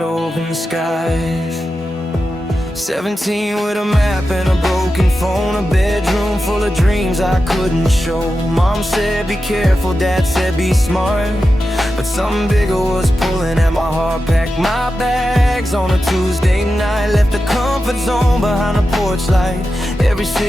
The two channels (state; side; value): normal; both; correlation 0.91